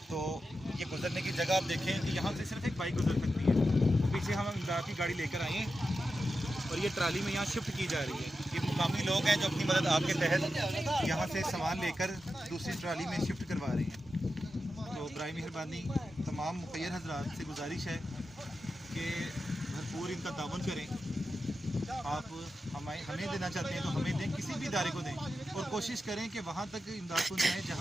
तो ये गुजरने की जगह आप देखें कि यहाँ से सिर्फ एक बाइक गुजर सकती है। तो पीछे हम इमदाद की गाड़ी लेकर आए हैं और ये ट्राली में यहाँ शिफ्ट की जा रही है। ये मुकामी लोग हैं जो अपनी मदद आपके तहत यहाँ से सामान लेकर दूसरी ट्राली में शिफ्ट करवा रहे हैं। तो बराए मेहरबानी तमाम मुखैर हजरात से गुजारिश है कि भरपूर इनका ताउन करें। आप हमें देना चाहते हैं तो हमें दें, किसी भी इदारे को दें, और कोशिश करें कि वहाँ तक इमदाद पहुँचाएँ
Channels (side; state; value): both; normal; correlation 0.90